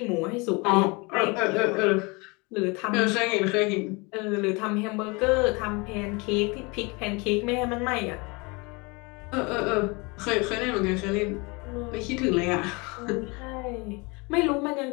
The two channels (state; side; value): quieter; right; 27.8 dB